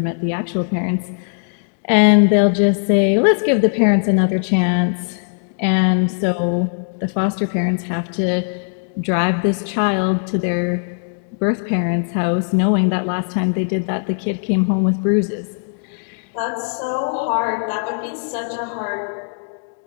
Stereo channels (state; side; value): silent; right; digital silence